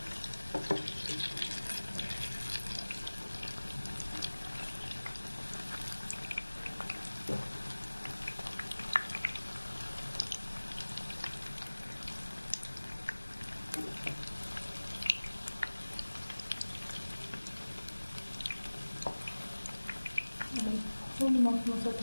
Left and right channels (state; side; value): inverted; both; correlation -1.00